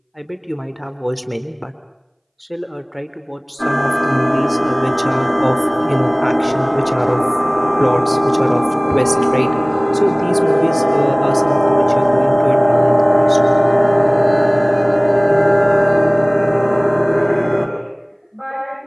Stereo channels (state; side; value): identical; both; correlation 1.00